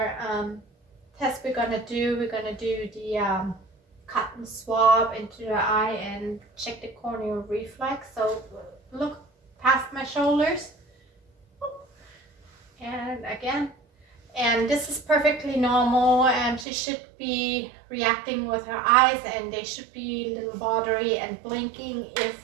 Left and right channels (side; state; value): left; drops out; at 16.7 s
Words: test we're gonna do. We're gonna do the cotton swab into the eye and check the corneal reflex. So look past my shoulders, and again, and this is perfectly normal, and she should be reacting with her eyes, and they should be a little watery and blinking.